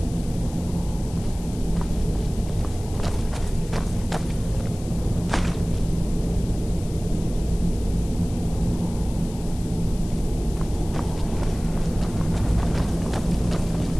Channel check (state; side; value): noise; left; hiss, 18 dB below the sound